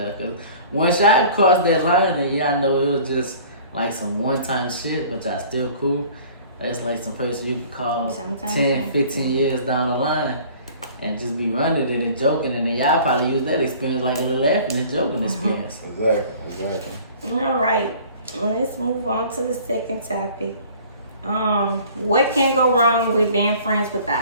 Cause once y'all crossed that line, and y'all know it was just like some one-time shit, but y'all still cool. That's like some person you can call 10, 15 years down the line, and just be running it and joking, and then y'all probably use that experience like a little laughing and joking experience. Exactly. All right. Let's move on to the second topic. What can go wrong with being friends with the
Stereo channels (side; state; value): both; inverted; correlation -0.48